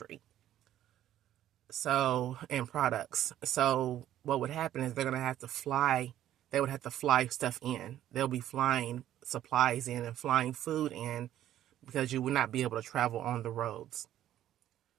So, and products. So what would happen is they're going to have to fly. They would have to fly stuff in. They'll be flying supplies in and flying food in, because you would not be able to travel on the roads.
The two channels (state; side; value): quieter; left; 12.2 dB